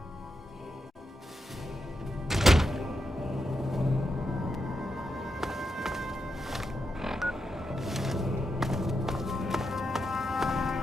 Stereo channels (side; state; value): both; normal; correlation 0.85